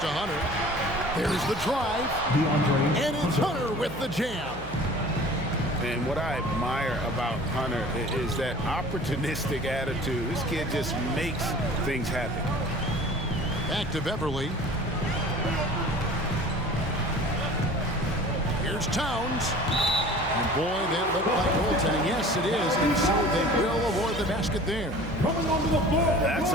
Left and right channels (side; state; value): right; noise; hum, 14 dB below the sound